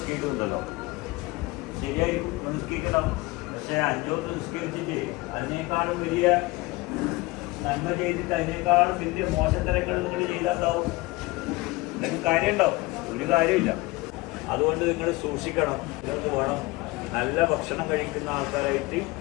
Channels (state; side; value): quieter; right; 21.8 dB